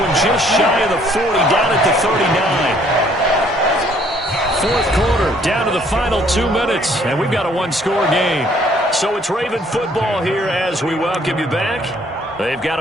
just shy of the 40, down at the 39. Fourth quarter, down to the final 2 minutes, and we've got a one-score game. So it's Raven football here as we welcome you back. They've got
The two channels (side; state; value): both; normal; correlation 0.62